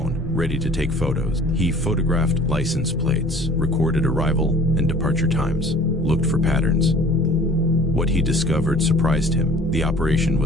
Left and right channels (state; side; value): normal; both; correlation 0.49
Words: ready to take photos. He photographed license plates, recorded arrival and departure times, looked for patterns. What he discovered surprised him. The operation